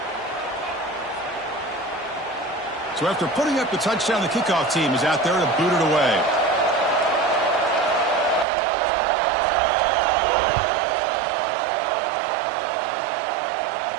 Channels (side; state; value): left; drops out; at 8.5 s